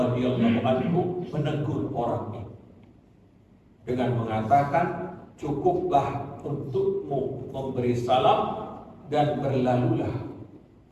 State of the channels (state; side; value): identical; both; correlation 1.00